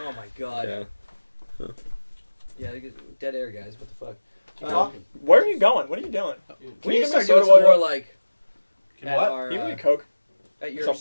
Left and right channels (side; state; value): both; inverted; correlation -1.00